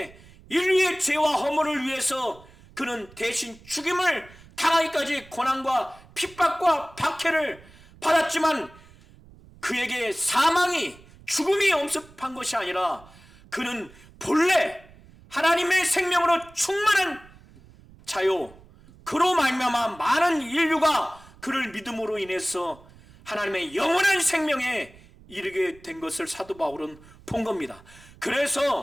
인류의 죄와 허물을 위해서 그는 대신 죽임을 당하기까지 고난과 핍박과 박해를 받았지만 그에게 사망이, 죽음이 엄습한 것이 아니라 그는 본래 하나님의 생명으로 충만한 자요, 그로 말미암아 많은 인류가 그를 믿음으로 인해서 하나님의 영원한 생명에 이르게 된 것을 사도 바울은 본 겁니다.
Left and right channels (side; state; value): right; noise; rumble, 24 dB below the sound